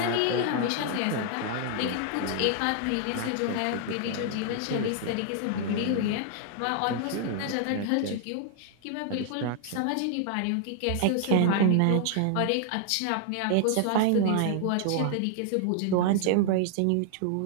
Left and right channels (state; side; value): different; both; correlation 0.00